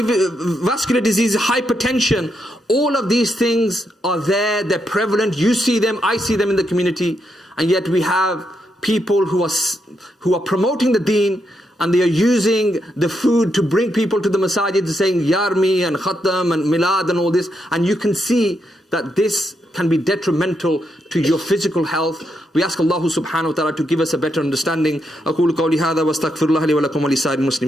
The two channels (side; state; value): both; normal; correlation 0.81